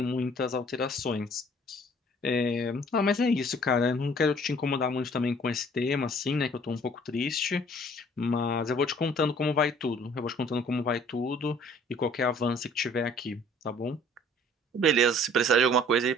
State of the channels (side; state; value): both; normal; correlation 0.55